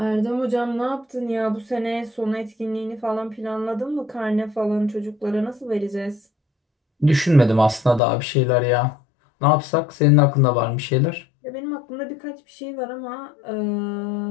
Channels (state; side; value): drops out; right; at 8.0 s